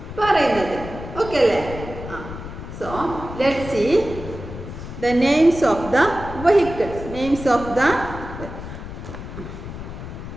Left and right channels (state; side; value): noise; left; rumble, 10 dB below the sound